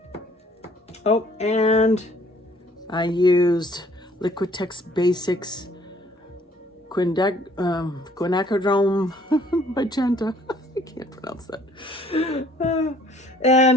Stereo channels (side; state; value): both; normal; correlation 0.59